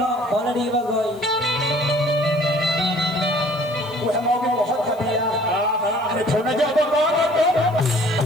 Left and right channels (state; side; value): noise; left; hiss, 26 dB below the sound